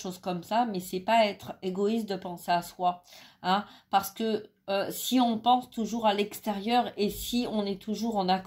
comme ça. Mais c'est pas être égoïste de penser à soi, hein, parce que si on pense toujours à l'extérieur et si on est toujours en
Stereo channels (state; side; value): identical; both; correlation 1.00